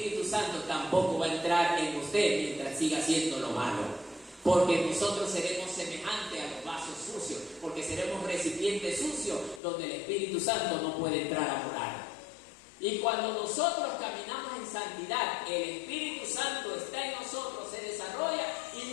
Santo tampoco va a entrar en usted mientras siga haciendo lo malo. Porque nosotros seremos semejantes a los vasos sucios, porque seremos recipientes sucios donde el Espíritu Santo no puede entrar a morar. Y cuando nosotros caminamos en santidad, el Espíritu Santo está en nosotros, se desarrolla y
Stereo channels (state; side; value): drops out; right; at 9.6 s